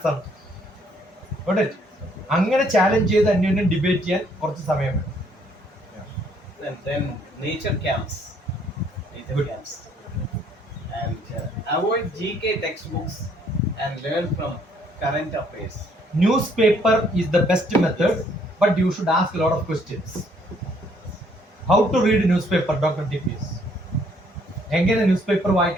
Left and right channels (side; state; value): both; normal; correlation 0.65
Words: ആണ്. അങ്ങനെ ചാലഞ്ച് ചെയ്ത് അന്യോന്യം ഡിബേറ്റ് ചെയ്യാൻ കുറച്ച് സമയം വേണം. Then nature camps. And avoid GK textbooks and learn from current affairs. Newspaper is the best method, but you should ask a lot of questions. How to read newspaper, Dr. TPS? എങ്ങനെ news paper